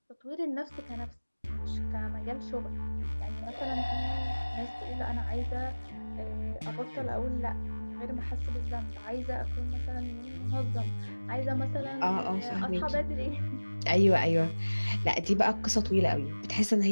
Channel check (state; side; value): inverted; both; correlation -1.00